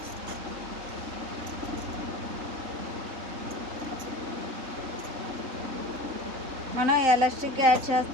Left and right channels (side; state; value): left; late; 3.9 ms